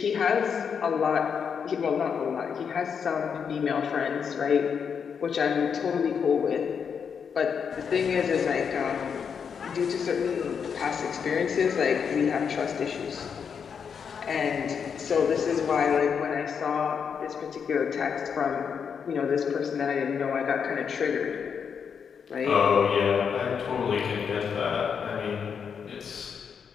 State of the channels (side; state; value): right; quieter; 6.8 dB